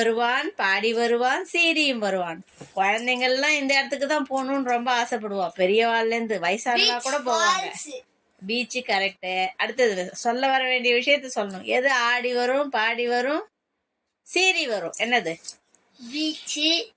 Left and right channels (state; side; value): identical; both; correlation 1.00